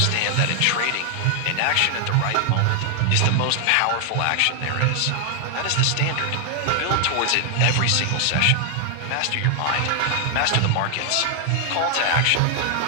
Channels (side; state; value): both; different; correlation 0.00